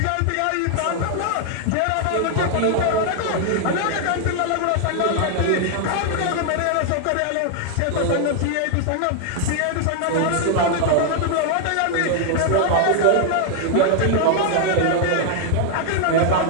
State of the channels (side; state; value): both; different; correlation 0.00